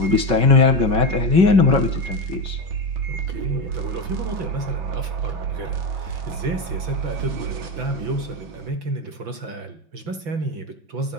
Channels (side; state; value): left; late; 5.9 ms